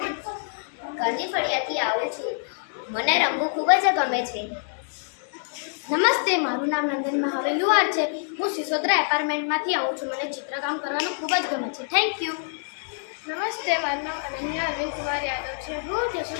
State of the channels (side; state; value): right; silent; digital silence